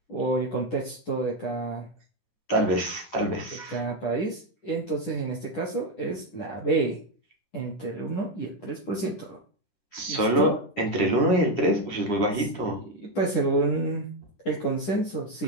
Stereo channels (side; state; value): right; late; 10 ms